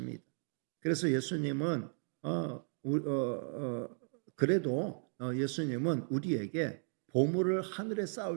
그래서 예수님은 그래도 예수님은 우리에게 보물을 하늘에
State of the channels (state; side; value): silent; left; 54 dB below the other